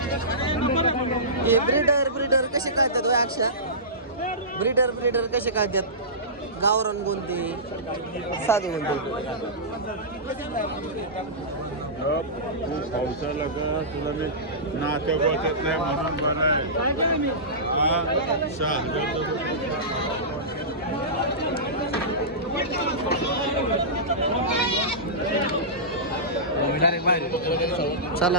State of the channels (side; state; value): both; normal; correlation -0.20